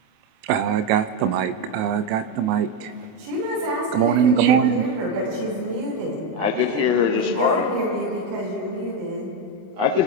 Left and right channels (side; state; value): left; late; 28 ms